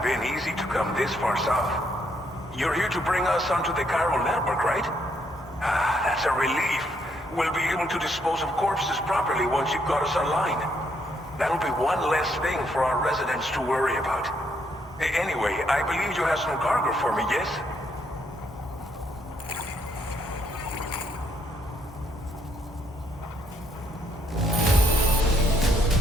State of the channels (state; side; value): normal; both; correlation 0.73